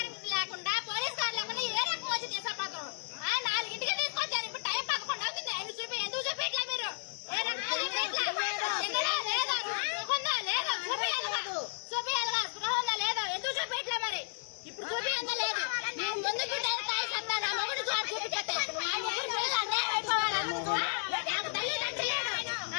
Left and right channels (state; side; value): silent; right; digital silence